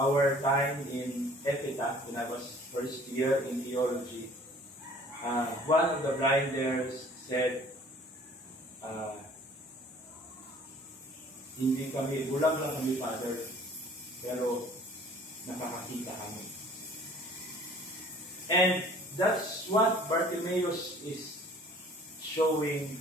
time in Epita when I was first year in theology. One of the blinders said, hindi kami, bulag lang kami, Father, pero nakakakita kami. And that's what Bartimaeus is showing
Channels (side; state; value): both; normal; correlation 0.52